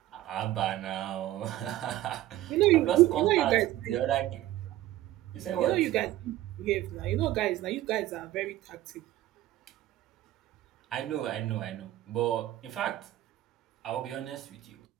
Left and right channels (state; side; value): quieter; left; 14.7 dB